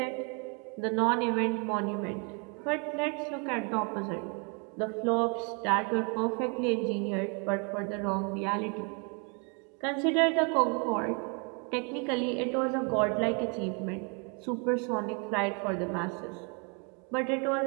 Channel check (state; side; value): quieter; left; 35.5 dB